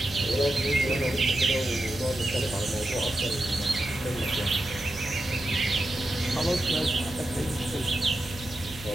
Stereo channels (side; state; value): right; noise; hum, 16 dB below the sound